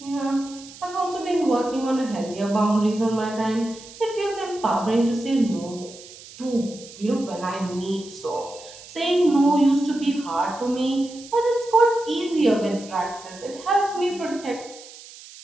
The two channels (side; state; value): right; noise; hiss, 18 dB below the sound